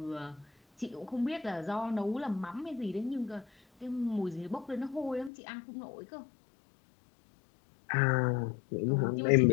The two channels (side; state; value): right; drops out; at 5.3 s